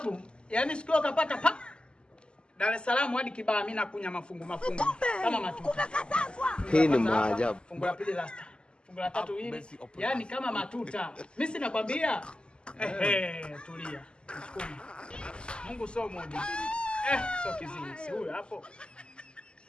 yani siku akapata pa Dar es Salaam hadi Kibaha mimi nakunya mafungu kama matuta. Hii ni maajabu. Fungu la pili lasta. Fungu la tatu hili. Yani kama matuta. Mimi sinakwambia. Tulia. Msukuma. Mungu sio mmoja. Sio kiziwi. Si huyo hapo.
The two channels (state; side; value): late; right; 0.050 ms